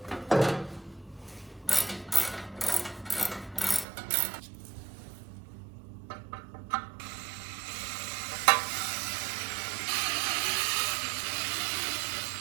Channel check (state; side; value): drops out; left; at 3.9 s